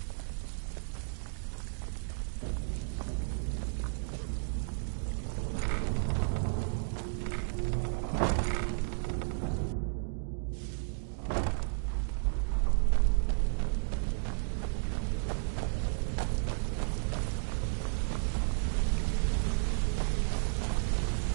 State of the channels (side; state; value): left; silent; digital silence